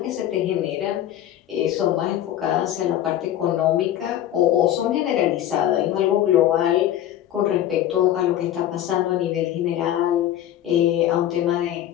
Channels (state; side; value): quieter; right; 11.8 dB